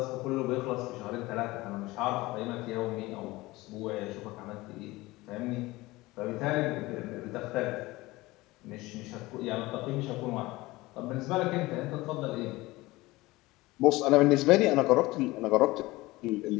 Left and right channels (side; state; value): right; quieter; 20.2 dB